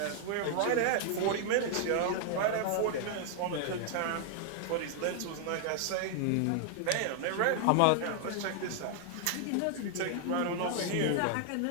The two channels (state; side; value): different; both; correlation 0.00